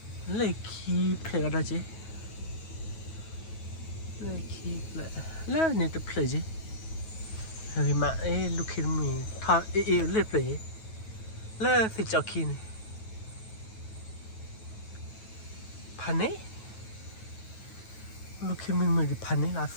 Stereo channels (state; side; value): late; right; 9.3 ms